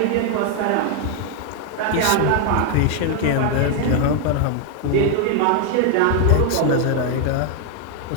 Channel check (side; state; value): both; different; correlation 0.01